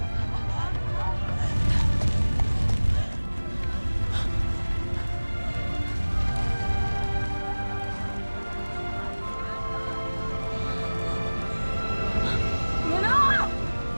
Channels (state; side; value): inverted; both; correlation -1.00